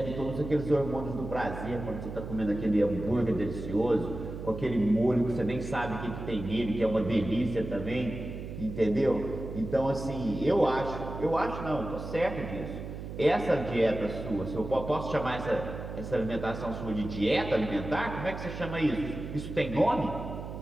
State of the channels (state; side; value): noise; right; hum, 8 dB below the sound